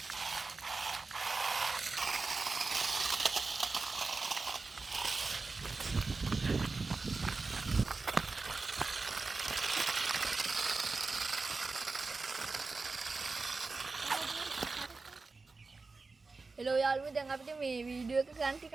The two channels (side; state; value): left; quieter; 4.0 dB